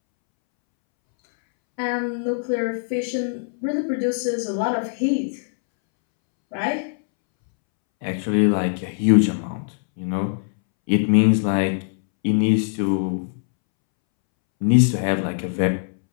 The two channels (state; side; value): silent; right; 64 dB below the other